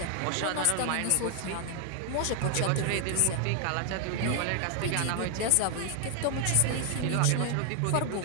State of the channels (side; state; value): both; different; correlation 0.00